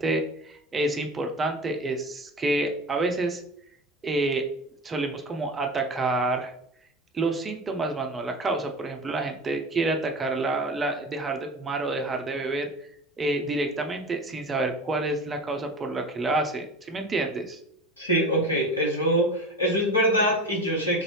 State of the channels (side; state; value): both; normal; correlation 0.31